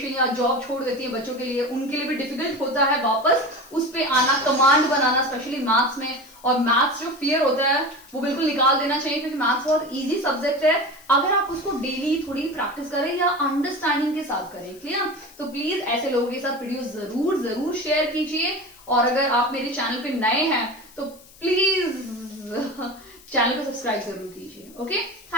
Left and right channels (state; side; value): noise; left; hiss, 23 dB below the sound